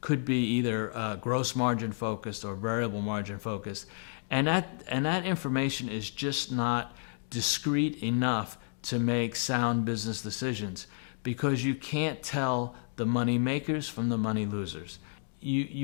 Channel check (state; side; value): silent; right; digital silence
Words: be either gross margin focused or variable margin focused, and that information is just not discrete enough to make sound business decisions, because you can't tell the money makers from the money losers.